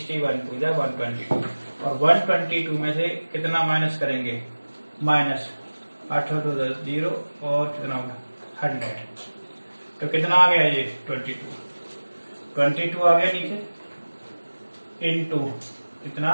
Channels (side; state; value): both; inverted; correlation -1.00